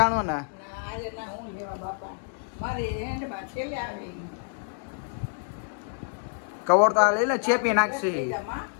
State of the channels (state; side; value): silent; right; 60 dB below the other